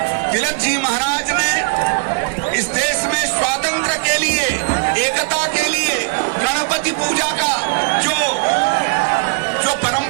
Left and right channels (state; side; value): quieter; left; 35.7 dB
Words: तिलक जी महाराज ने इस देश में स्वातंत्र्य के लिए, एकता के लिए गणपति पूजा का जो